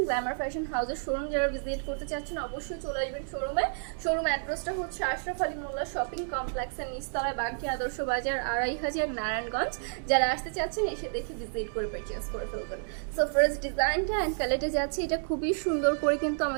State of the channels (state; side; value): silent; left; digital silence